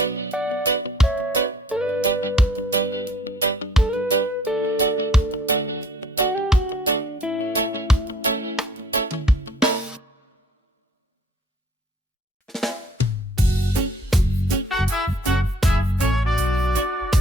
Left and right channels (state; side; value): normal; both; correlation 0.57